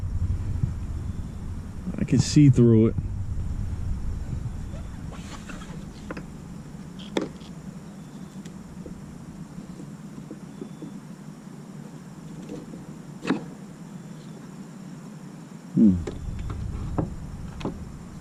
I can see through it.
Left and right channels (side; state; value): both; identical; correlation 1.00